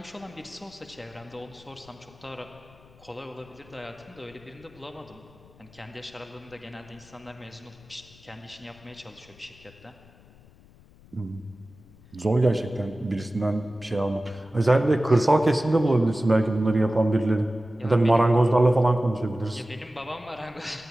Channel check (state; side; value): noise; left; rumble, 25 dB below the sound